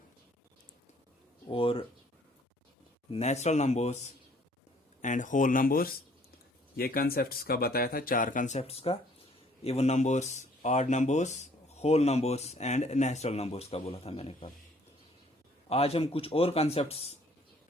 और natural numbers and whole numbers ये कंसेप्ट्स का बताया था, 4 कंसेप्ट्स का। Even numbers, odd numbers, whole numbers and natural numbers का बोला था मैंने कल। आज हम कुछ और कंसेप्ट्स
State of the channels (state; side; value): normal; both; correlation 0.60